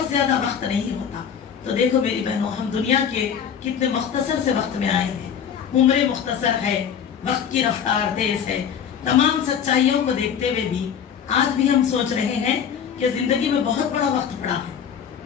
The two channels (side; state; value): right; quieter; 7.9 dB